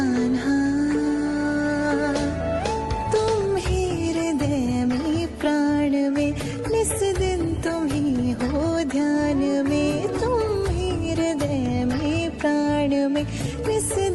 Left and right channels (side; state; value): both; identical; correlation 1.00